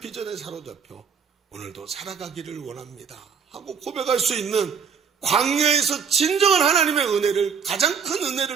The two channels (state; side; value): quieter; left; 6.6 dB